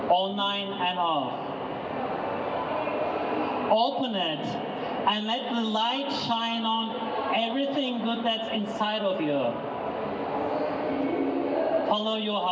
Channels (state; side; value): identical; both; correlation 1.00